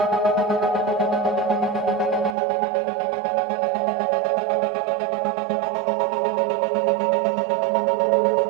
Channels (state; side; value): drops out; left; at 2.4 s